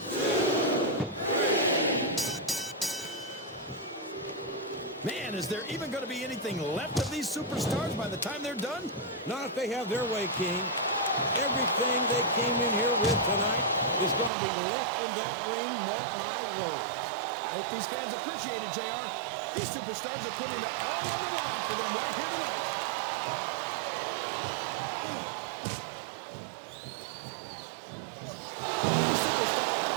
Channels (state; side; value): drops out; left; at 14.3 s